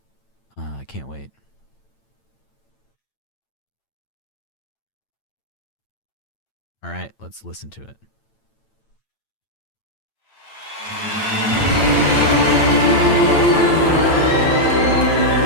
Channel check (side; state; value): right; late; 8.9 ms